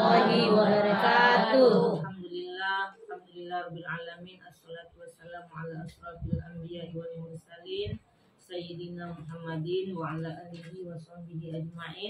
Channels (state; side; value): identical; both; correlation 1.00